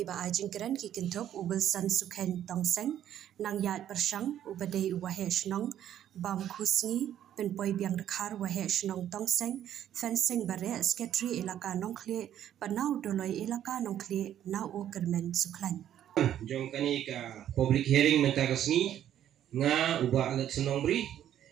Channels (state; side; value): quieter; left; 10.9 dB